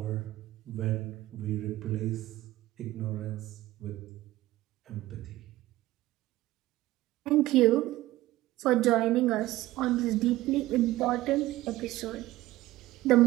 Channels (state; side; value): quieter; left; 16.8 dB